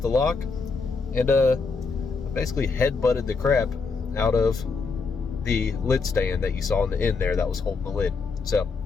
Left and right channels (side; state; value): right; quieter; 4.5 dB